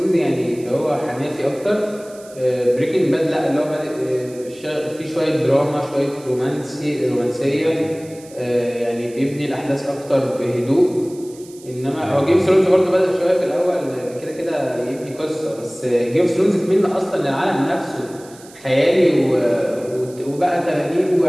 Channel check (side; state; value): right; noise; hiss, 22 dB below the sound